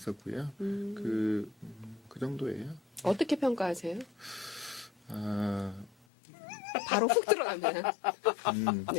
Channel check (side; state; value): right; drops out; at 5.9 s